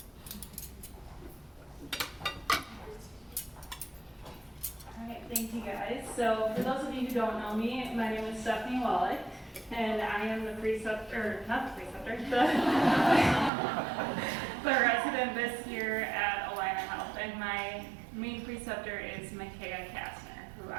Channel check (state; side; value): drops out; left; at 13.5 s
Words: Alright, thank you guys. So for those of you who don't know me, my name is Stephanie Wallach, and I am the preceptor, the resident this year at Alina Health, and my main preceptor is Micaiah Kastner, who